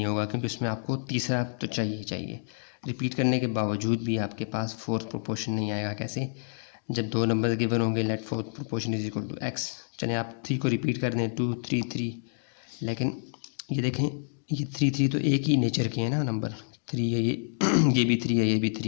होगा क्योंकि उसमें आपको तीसरा तो चाहिए। रिपीट करने के बावजूद भी आपके पास फोर्थ प्रोपोर्शन नहीं आएगा। कैसे, जब 2 नंबर गिवन होंगे let fourth proportion is equal to x. चलें आप 3 को रिपीट कर दें, 2, 3, 3, लेकिन ये देखें, ये 3 तो एक ही नेचर के हैं ना, नंबर 3 है ये ये भी 3 है, ये भी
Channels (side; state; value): right; silent; digital silence